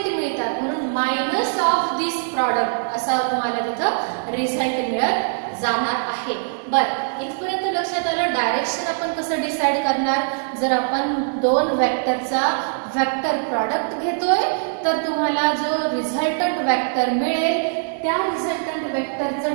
मिळतात, म्हणून मायनस ऑफ दिस प्रॉडक्ट असा तुम्हाला तिथं रिझल्ट मिळत जाणार आहे. बरं, इथपर्यंत लक्षात आलं. डायरेक्शन आपण कसं डिसाइड करणार? जर आपण दोन वेक्टरचा वेक्टर प्रॉडक्ट घेतोय तर तुम्हाला जो रिझल्टंट वेक्टर मिळेल त्या रिझल्टंट वेक्टरचं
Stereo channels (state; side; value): silent; left; 64 dB below the other